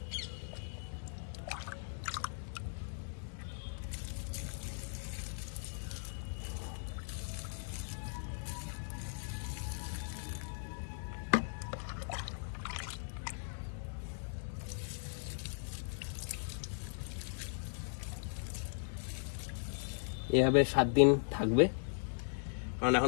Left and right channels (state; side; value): silent; right; digital silence